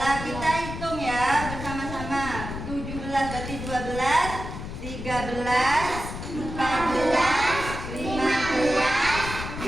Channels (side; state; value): left; noise; rumble, 8 dB below the sound